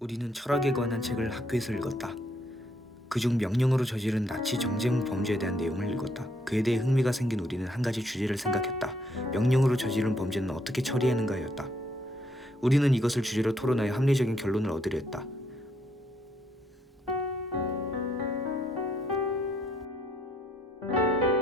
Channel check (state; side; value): normal; both; correlation 0.72